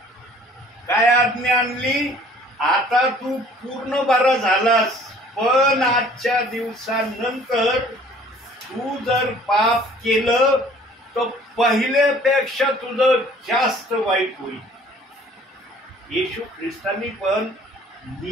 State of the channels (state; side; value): normal; both; correlation 0.54